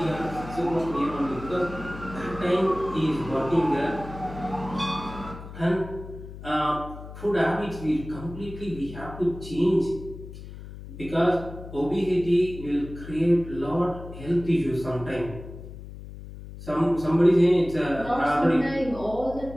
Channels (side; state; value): left; noise; hum, 13 dB below the sound